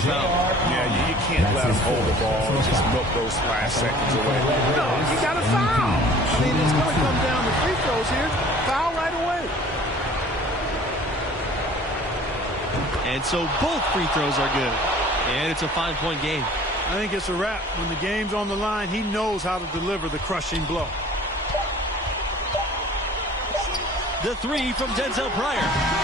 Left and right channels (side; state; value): both; normal; correlation 0.49